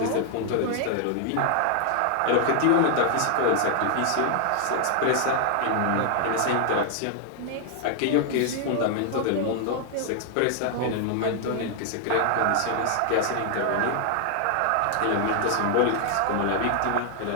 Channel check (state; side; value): different; both; correlation 0.00